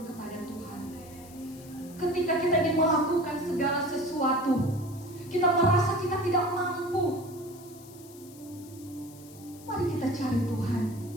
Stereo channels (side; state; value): left; noise; hiss, 21 dB below the sound